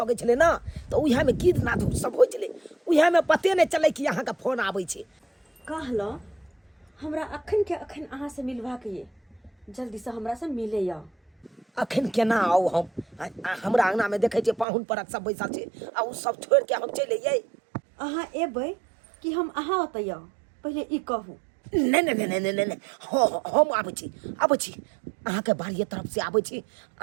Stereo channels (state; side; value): drops out; left; at 14.7 s